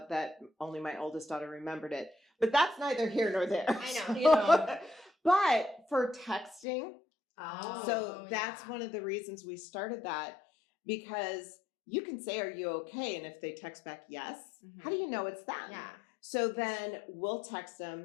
that only my oldest daughter remembered it, but that's neither here nor there. I know. So- You know. but for texting, Oh. so that's yeah. one of the reasons we started that, because you can say, "Are you okay?" And if they text back yes, Mhm. how do you know it's them? Yeah. So then we'll text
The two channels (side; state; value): right; drops out; at 6.7 s